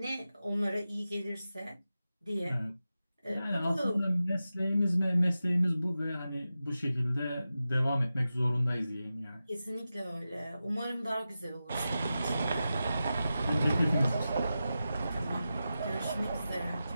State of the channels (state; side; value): inverted; both; correlation -0.92